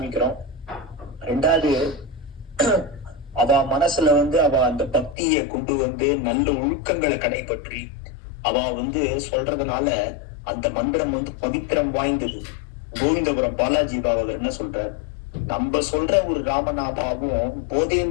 ரெண்டாவது, அவ மனசுல வந்து அவ அந்த பக்தியை கொண்டு வந்து நல்ல ஒழுக்கங்களை கடைபற்றி அவ வந்து சொல்றதுனால அந்த மந்திரம் வந்து பவித்திரம் வாய்ந்தது. கோவிந்தபுரம் பாலாஜி பாகவதர் என்ன சொல்றார்? நம்ம சொல்ற ஒரு ராமநாமாவும்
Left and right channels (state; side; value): drops out; right; at 5.2 s